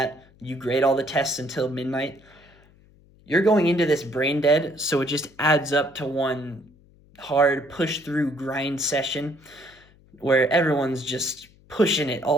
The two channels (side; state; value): left; noise; hum, 28 dB below the sound